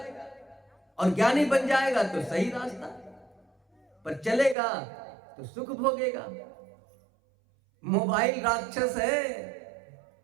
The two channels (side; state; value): left; drops out; at 4.5 s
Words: और ज्ञानी बन जाएगा तो सही रास्ता पर चलेगा तो सुख भोगेगा। मोबाइल राक्षस है,